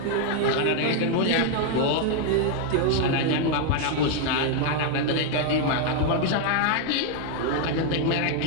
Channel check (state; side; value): different; both; correlation 0.00